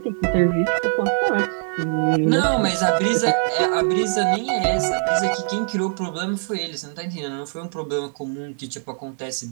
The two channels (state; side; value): silent; left; 64 dB below the other